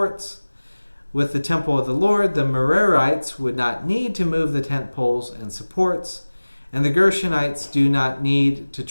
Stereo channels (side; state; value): both; inverted; correlation -1.00